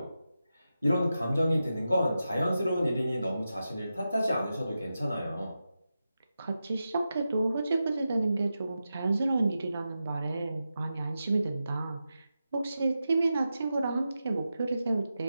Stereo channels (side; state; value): both; inverted; correlation -0.90